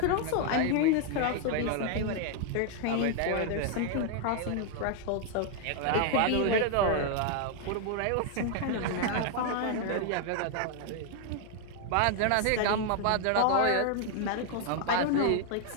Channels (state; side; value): different; both; correlation 0.00